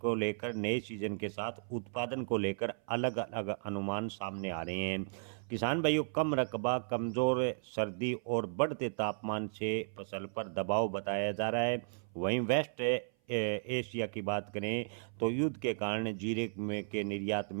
लेकर नए सीजन के साथ उत्पादन को लेकर अलग अलग अनुमान सामने आ रहे हैं। किसान भाइयों, कम रकबा, कमजोर सर्दी और बढ़ते तापमान से फसल पर दबाव बताया जा रहा है। वहीं वेस्ट एशिया की बात करें तो युद्ध के कारण जीरे में के निर्यात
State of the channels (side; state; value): left; silent; 54 dB below the other